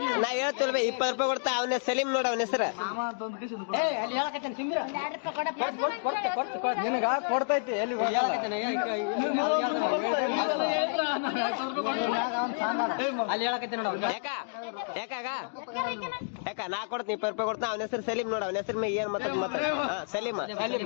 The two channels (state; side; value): silent; right; digital silence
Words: ನಾ ಹೇಳ್ತಿಲ್ವ 20 ರೂಪಾಯಿ ಕೊಡ್ತಾ. ಅವನ ಸಲೀಮ್ ನೋಡ, ಅವನ ಹೆಸರು ಕೊಡ್ತೈತಿ. ಯಾಕ ನಾ ಕೊಡ್ತೀನಿ 20 ರೂಪಾಯಿ ಕೊಡ್ತಾ. ಅವನ ಹೆಸರು ಸಲೀಮ್ ನೋಡ, ಅವನ ಹೆಸರು ಏನ್ ಮಾತಾಡ. ಹಾ ಸಲೀಮ.